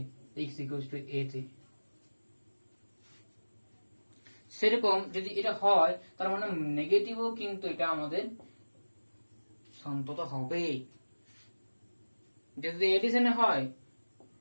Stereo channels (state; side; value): inverted; both; correlation -1.00